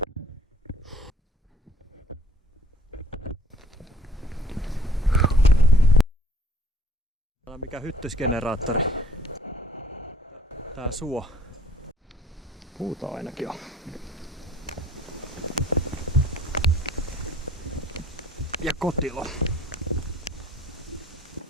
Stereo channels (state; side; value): normal; both; correlation 0.55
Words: Tää on mikä hyttysgeneraattori. Tää suo. Puuta ainakin on. Ja kotilo.